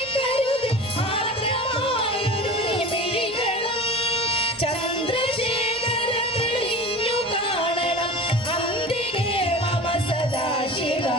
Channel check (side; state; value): both; normal; correlation 0.35